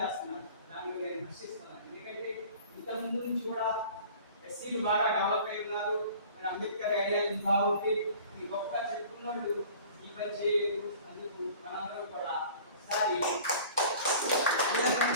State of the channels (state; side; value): inverted; both; correlation -0.46